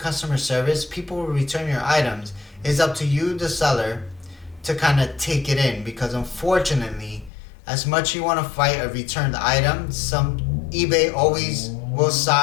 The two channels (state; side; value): drops out; right; at 7.3 s